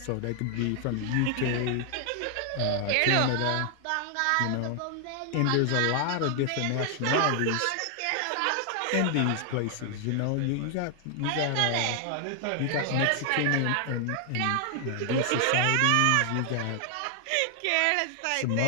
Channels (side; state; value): both; different; correlation 0.00